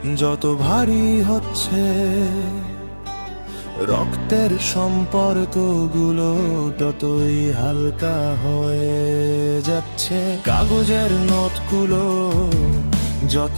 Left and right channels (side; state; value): both; inverted; correlation -1.00